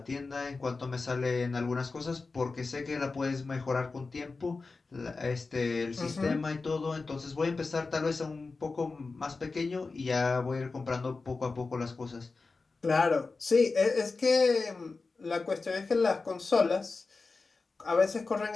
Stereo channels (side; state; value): right; quieter; 4.0 dB